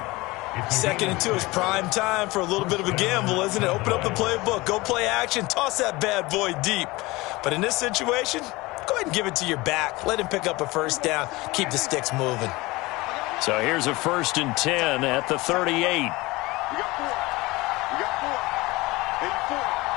2nd and 2 is prime time for a little bit of a gamble, isn't it? Open up the playbook, go play action, toss that bad boy deep. But in this situation, go ahead and give it to your back. Let him pick up a first down. Keep the sticks moving. So here's a 1st and 10 at the 38. We got 4. 84.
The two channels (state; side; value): quieter; right; 21.7 dB